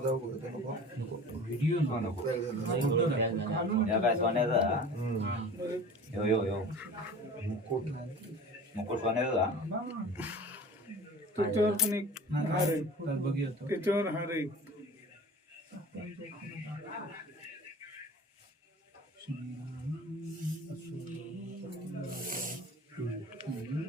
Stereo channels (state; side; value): normal; both; correlation 0.40